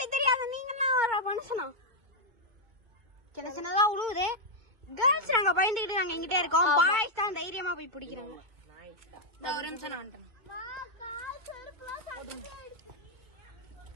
தெரியாத நீங்கலாம் ஒரு மனுஷனா? சின்ன சின்னதா உழுவுது. கேர்ள்ஸ் நாங்க பயந்துக்கிட்டு நாங்க எங்கிட்டே இருக்கோம். பாய்ஸ் தான் தைரியமா போய் பிடிக்கிறாங்க. இந்த ஒரு நிமிஷம் நான் வந்துட்டேன்.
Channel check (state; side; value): late; left; 2.2 ms